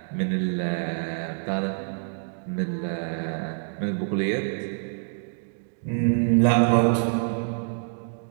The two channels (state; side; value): silent; left; digital silence